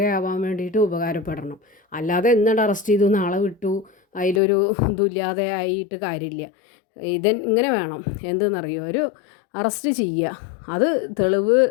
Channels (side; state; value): right; drops out; at 4.4 s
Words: വേണ്ടിയിട്ട് ഉപകാരപ്പെടണം. അല്ലാതെ എന്നിട്ട് അറസ്റ്റ് ചെയ്തു നാളെ വിട്ടു അതിലൊരു ഇതുമില്ലാതെ ആയിട്ട് കാര്യമില്ല. ഇങ്ങനെ വേണം. എന്തെന്നറിയോ, ഒരു അറസ്റ്റ് ചെയ്യുക, അത് തെളിവ്